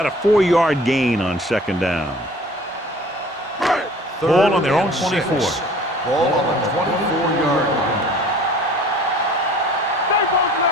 a 4-yard gain on second down. Ball on their own 24. Ball on the 24-yard line.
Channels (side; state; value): both; normal; correlation 0.48